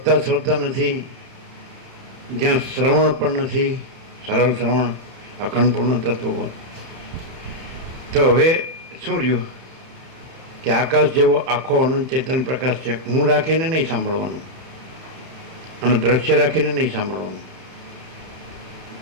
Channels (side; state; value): left; late; 31 ms